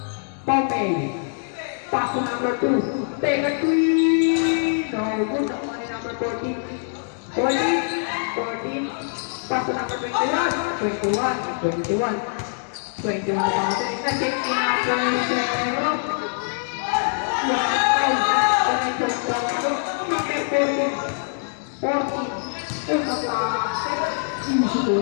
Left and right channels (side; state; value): right; silent; digital silence